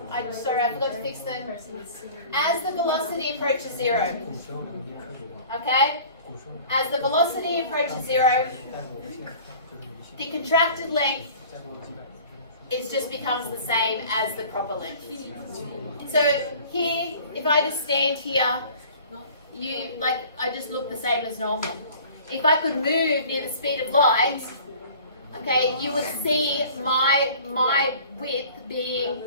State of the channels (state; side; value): inverted; both; correlation -0.46